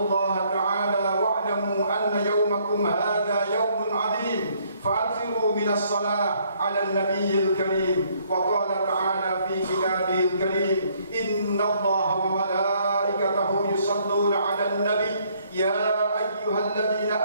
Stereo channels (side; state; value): both; inverted; correlation -0.66